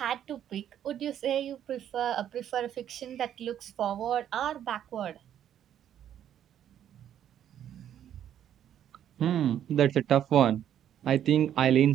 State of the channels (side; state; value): left; quieter; 10.3 dB